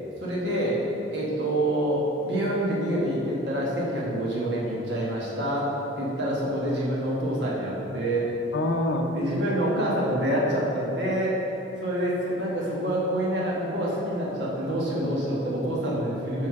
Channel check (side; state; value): both; normal; correlation 0.41